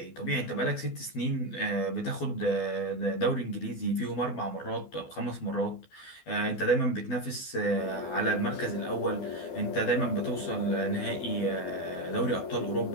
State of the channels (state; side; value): late; right; 12 ms